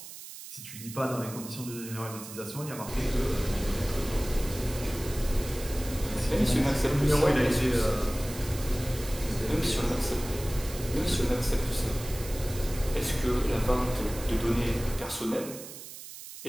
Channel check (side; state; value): right; noise; hiss, 13 dB below the sound